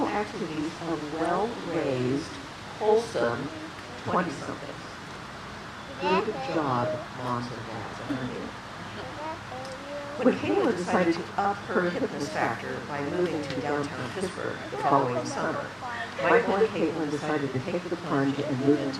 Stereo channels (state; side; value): identical; both; correlation 1.00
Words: activities of well-raised, wholesome 20-somethings. Good job, Moms and Dads, aren't you? When Kayla decided to up her fitness factor by moving to downtown Pittsburgh the following summer, Michael and Kaitlin decided to take the plunge and move into